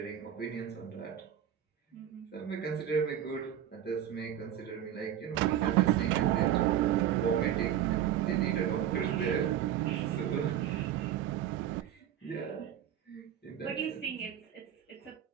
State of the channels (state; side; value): quieter; left; 10.5 dB